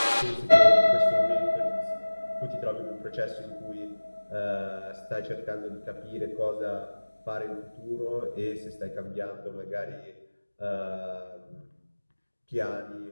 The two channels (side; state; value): both; inverted; correlation -1.00